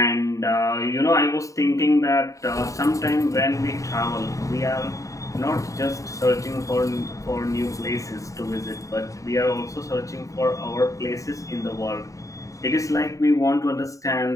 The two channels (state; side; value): late; right; 0.16 ms